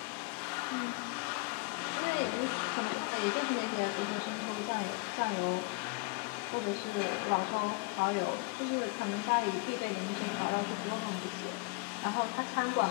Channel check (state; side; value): quieter; right; 29.2 dB